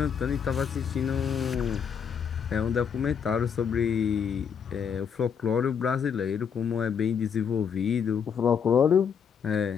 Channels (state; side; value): quieter; right; 7.1 dB